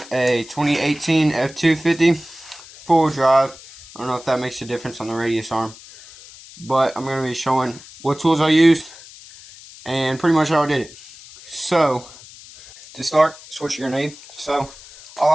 a 2018 F250 full drive. I don't know if that makes a difference on the radius arm, but I'm going to be showing what tools I used and pretty much how I did it. So, to start, that's what you're going to need. So,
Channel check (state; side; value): noise; left; hiss, 19 dB below the sound